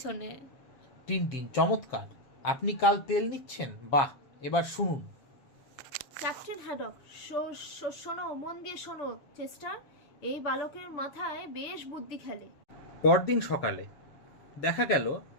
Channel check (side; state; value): right; late; 7.3 ms